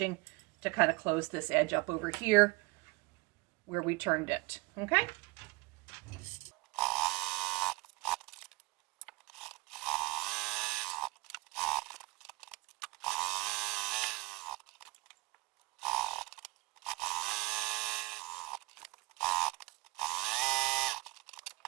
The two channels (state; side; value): quieter; left; 24.4 dB